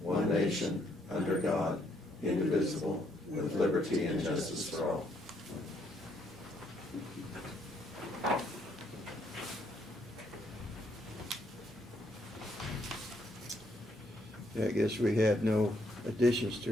nation, under God, indivisible, with liberty and justice for all. Yeah, I guess we have no additions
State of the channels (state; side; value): normal; both; correlation 0.72